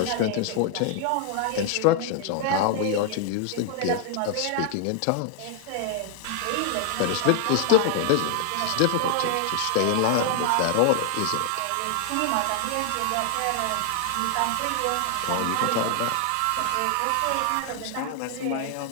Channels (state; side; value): different; both; correlation 0.00